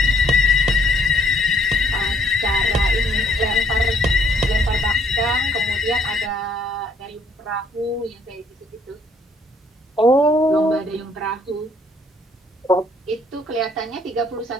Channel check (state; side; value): normal; both; correlation 0.64